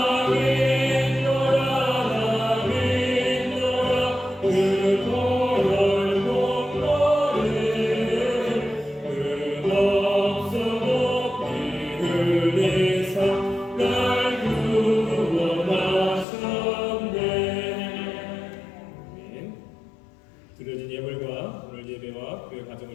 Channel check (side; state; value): right; drops out; at 16.2 s